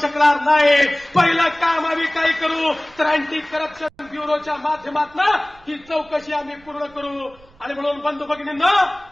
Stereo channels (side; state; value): right; noise; rumble, 27 dB below the sound